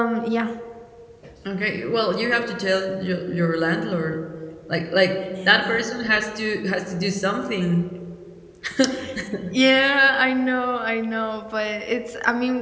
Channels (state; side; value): identical; both; correlation 1.00